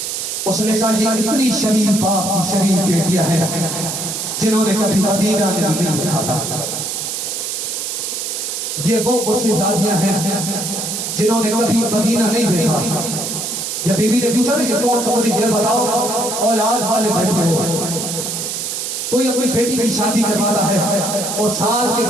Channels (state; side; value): noise; right; hiss, 3 dB below the sound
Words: उसने कहा ये इतनी शरीफ बाप की शरीफ बेटियां हैं जिन्होंने कभी मदीना नहीं देखा था। ये वो गुस्सेज़ादियां हैं जिन्होंने कभी मदीना नहीं देखा। जब बीबी ने पूछा ये कौन सा, मुझे ये बताओ, औलाद वाले बैठे हो, कोई अपनी बेटी की शादी करवाता है और साल के